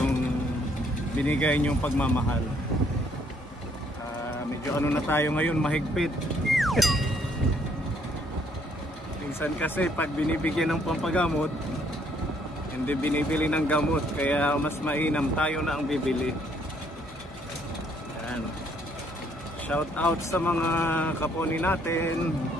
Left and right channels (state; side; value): normal; both; correlation 0.67